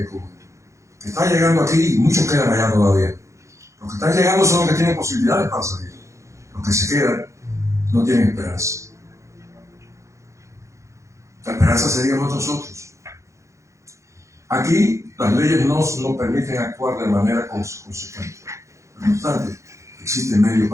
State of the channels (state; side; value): late; left; 0.15 ms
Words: Cuba, que está llegando aquí y muchos quedan allá todavía. Los que están llegando son los que tienen posibilidades para salir. Los que se quedan no tienen esperanza. La esperanza seríamos nosotros. Aquí las leyes no nos permiten actuar de manera consecuente. No obstante, existen medios